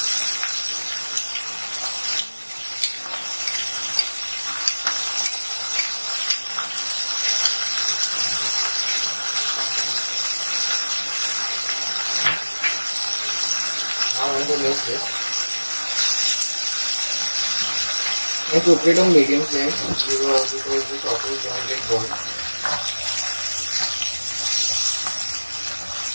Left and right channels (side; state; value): both; inverted; correlation -1.00